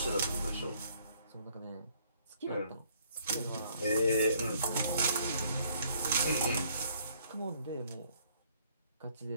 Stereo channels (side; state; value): both; inverted; correlation -0.64